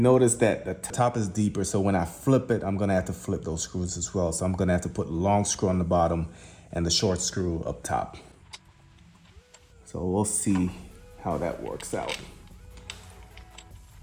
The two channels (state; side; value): identical; both; correlation 1.00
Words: notice that the top is deeper, so when I flip it, I'm gonna have to flip those screws as well. So I'm gonna have to put the long screw on the bottom and the short screw up top. So we'll see how that works out.